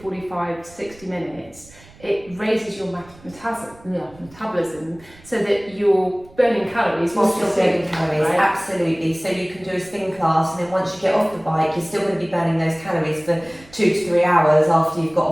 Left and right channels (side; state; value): right; noise; rumble, 24 dB below the sound